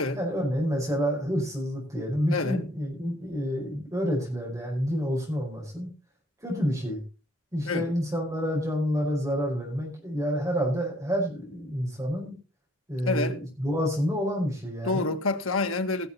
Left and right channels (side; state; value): both; normal; correlation 0.60